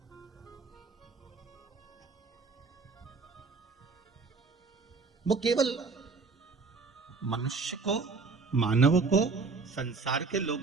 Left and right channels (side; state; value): left; quieter; 4.4 dB